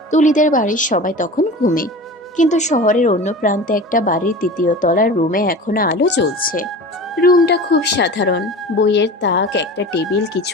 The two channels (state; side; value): normal; both; correlation 0.35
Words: তুলিদের বাড়ির সবাই তখন ঘুমে, কিন্তু শহরের অন্য প্রান্তে একটা বাড়ির ৩য় তলার রুমে এখনো আলো জ্বলছে। রুমটা খুব সাধারণ। বইয়ের তাক, একটা টেবিল,